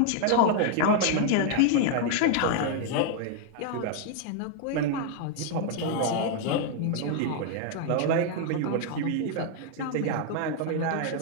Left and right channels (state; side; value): different; both; correlation 0.00